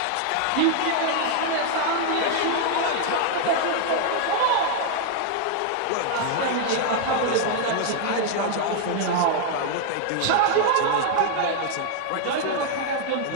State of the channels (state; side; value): different; both; correlation 0.00